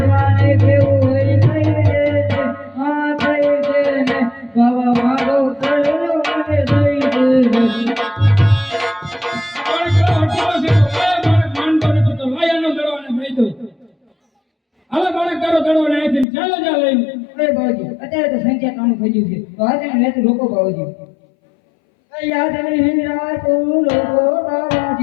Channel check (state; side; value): drops out; right; at 16.2 s